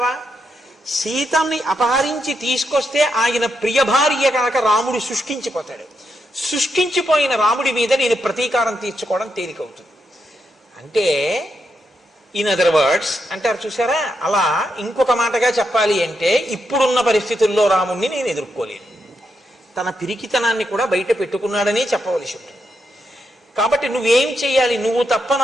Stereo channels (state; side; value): normal; both; correlation 0.83